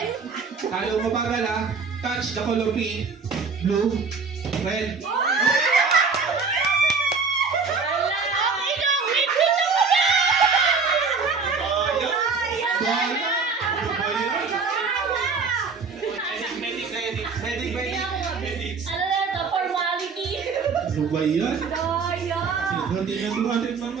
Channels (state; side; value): quieter; left; 4.9 dB